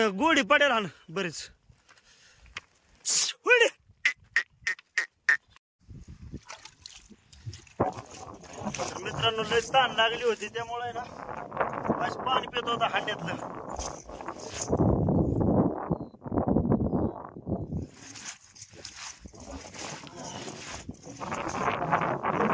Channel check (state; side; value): identical; both; correlation 1.00